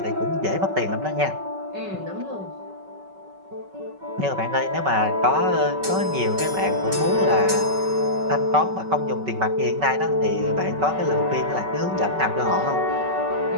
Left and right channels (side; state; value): left; late; 5.3 ms